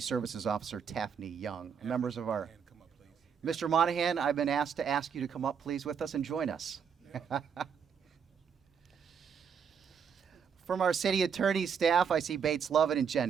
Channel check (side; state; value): left; quieter; 7.0 dB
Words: Officer Taffney Young. Members of our... Mr. Monahan, I've been asked to ask you to come up, please, with us and join us. From our city attorney staff, I see Bates Lovett and Jen